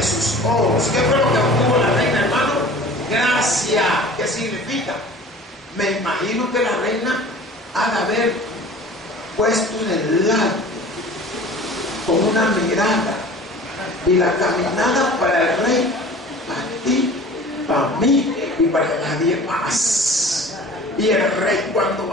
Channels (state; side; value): normal; both; correlation 0.44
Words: sus ojos. ¿Qué fue lo que obtuvo la reina, hermano? Gracia. ¿Qué significa? Me imagino que la reina ha de haber puesto en el lado con una mirada y la caminada para el rey, para ti, para mí y para nadie más. Y el rey, cuando